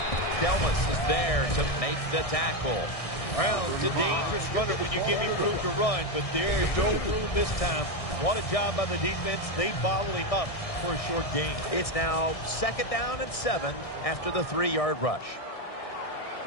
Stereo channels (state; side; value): late; right; 1.6 ms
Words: Delmas is there to make the tackle. Brown's a dangerous runner when you give him room to run, but there is no room this time. What a job by the defense. They bottle him up for a short gain. It's now 2nd down and 7 after the 3-yard rush.